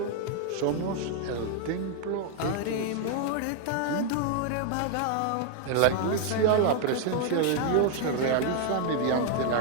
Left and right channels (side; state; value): both; different; correlation 0.00